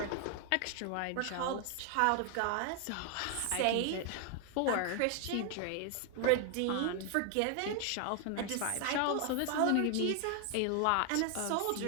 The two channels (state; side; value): different; both; correlation 0.00